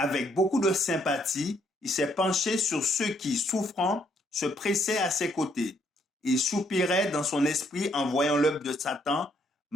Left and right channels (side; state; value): both; normal; correlation 0.71